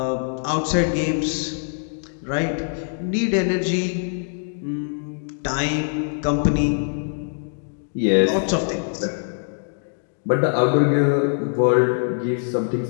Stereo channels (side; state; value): right; silent; digital silence